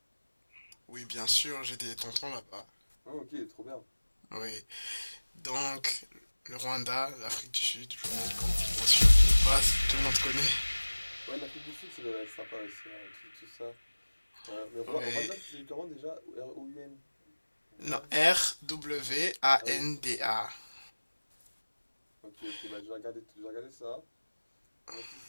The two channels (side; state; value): both; inverted; correlation -1.00